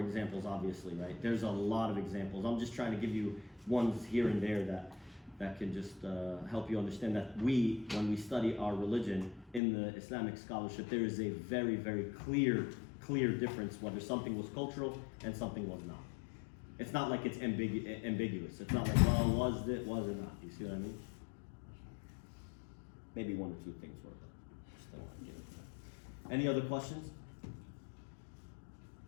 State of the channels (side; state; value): right; drops out; at 9.6 s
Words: obviously, right? There's a lot of examples. I'm just trying to give you ones here and there that can just help you understand that when we study our religion in the Islamic scholarship, there is a very, very clear difference whether something was cultural and something was not. It's not like it's ambiguous. It's not like, well, was it not? You see what I mean? Maybe one or two things were, but just don't want to give it to that. Any other questions?